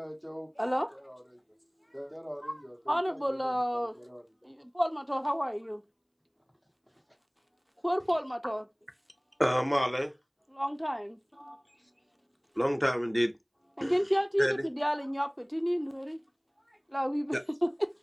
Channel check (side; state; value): both; identical; correlation 1.00